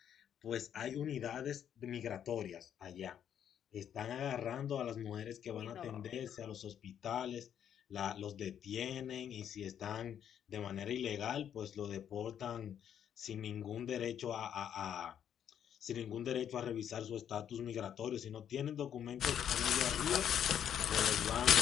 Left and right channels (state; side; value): quieter; right; 9.3 dB